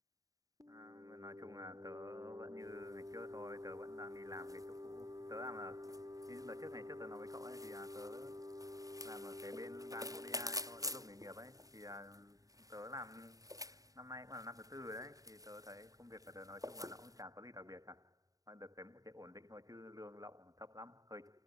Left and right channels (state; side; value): late; left; 0.17 ms